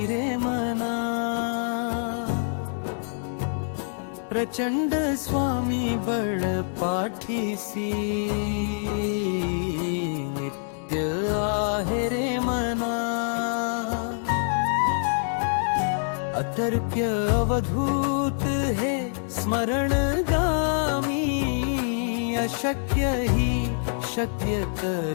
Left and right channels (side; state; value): right; silent; digital silence